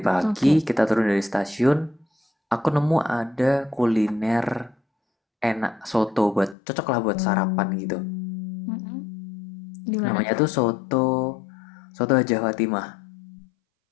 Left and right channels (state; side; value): drops out; right; at 6.6 s